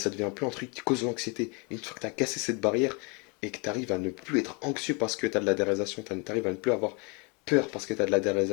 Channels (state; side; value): quieter; right; 31.8 dB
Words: devient plus un truc qui cause l'anxiété. Une fois que tu as cassé cette barrière et que tu arrives à ne plus être anxieux parce que tu as de la déréalisation, tu arrives à ne plus avoir peur parce que tu as de la